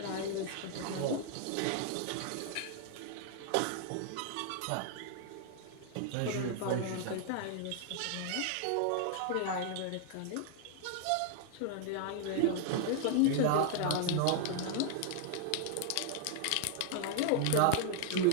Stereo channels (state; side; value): different; both; correlation 0.00